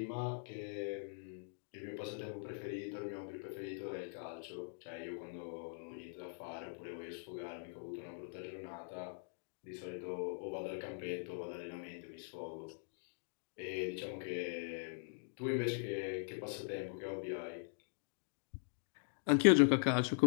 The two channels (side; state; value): right; silent; digital silence